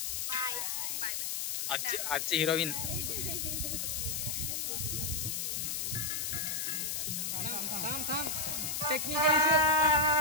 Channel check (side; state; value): left; noise; hiss, 1 dB below the sound